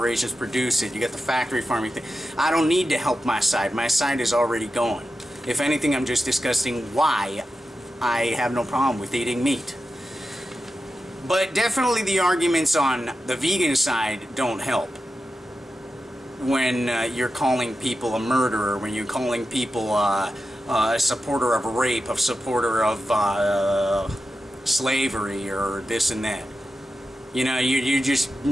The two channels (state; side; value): normal; both; correlation 0.91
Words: produce it, you got the factory farming thing. I don't need to help my side. My side is already going. If anything, I'm just discussing why I have no problem with eating meat. But definitely the arguments on the vegan side don't help. When you're calling people a murderer, when you're calling people a supporter of rape, a supporter of slavery, or this and that. You know, you're just